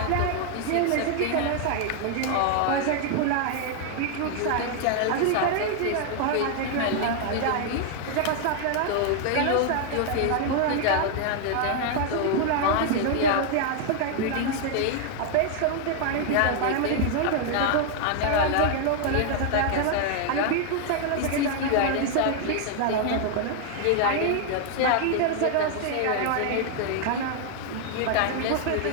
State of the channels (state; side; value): different; both; correlation 0.00